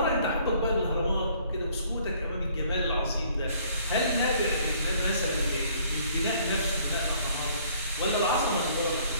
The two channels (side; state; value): both; inverted; correlation -0.60